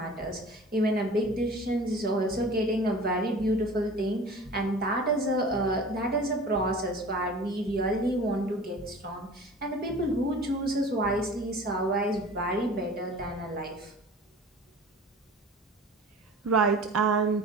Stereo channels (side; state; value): both; normal; correlation 0.41